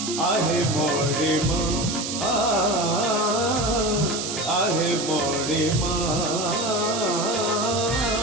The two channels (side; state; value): right; noise; hiss, 4 dB below the sound